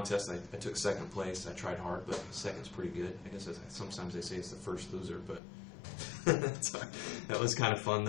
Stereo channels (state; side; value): drops out; right; at 5.4 s